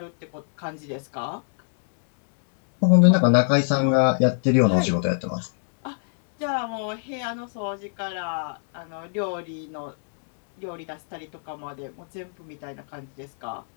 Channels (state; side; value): silent; right; digital silence